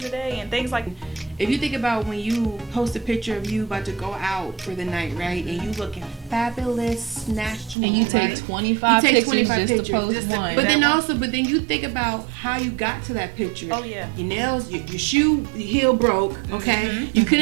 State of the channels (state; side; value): drops out; left; at 7.8 s